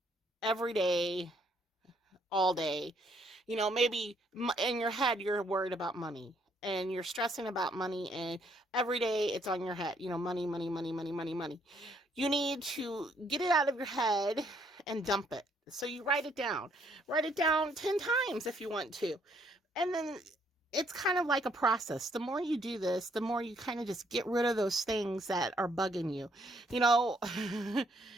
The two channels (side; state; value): both; normal; correlation 0.68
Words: every day, all day. Maybe in your head you're worried about money, and you're stressing about money, and every day it's on your head. Money, money, money, money, money, money. You need to get it out of your head and dump it. So you write it down. Write it down 10 times if you want to. And then it's kind of like a process. The more you do this, the more you kind of just get rid of those things that are bugging you.